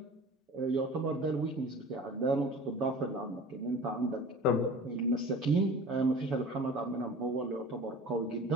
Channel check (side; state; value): both; normal; correlation 0.40